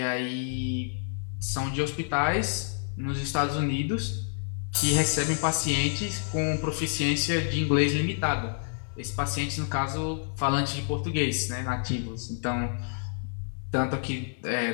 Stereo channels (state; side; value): silent; right; 59 dB below the other